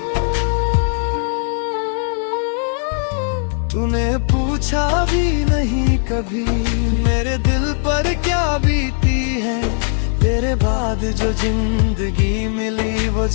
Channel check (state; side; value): silent; right; 67 dB below the other